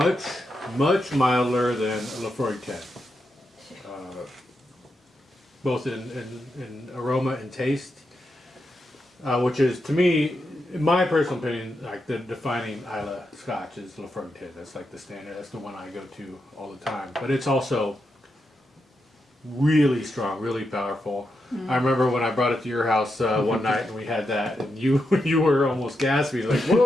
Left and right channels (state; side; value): normal; both; correlation 0.85